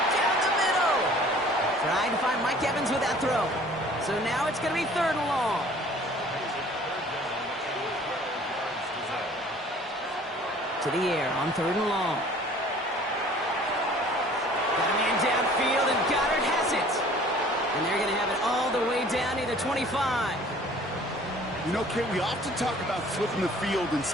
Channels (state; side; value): normal; both; correlation 0.51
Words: down the middle. Trying to find Mike Evans with that throw. So now it's going to be 3rd and long. To the air on 3rd and long. Got a man downfield, and Goddard has it. And they're going to have it all the way down to the 25. You know, Kate, we often talk about flipping the field in